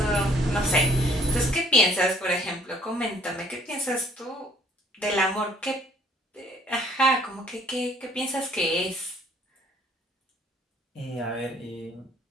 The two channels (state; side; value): normal; both; correlation 0.58